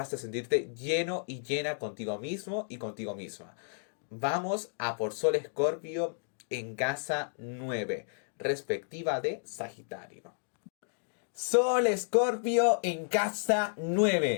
a sentirte lleno y llena contigo mismo y contigo misma. Vamos a por Sol Escorpio en casa 9, respectiva de Sagitario. Sol Escorpio en casa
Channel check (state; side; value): silent; right; digital silence